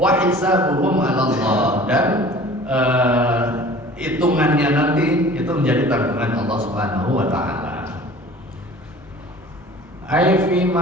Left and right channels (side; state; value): both; normal; correlation 0.45